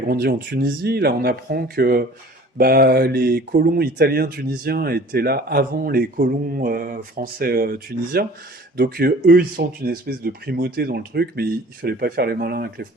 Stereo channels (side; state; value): both; normal; correlation 0.47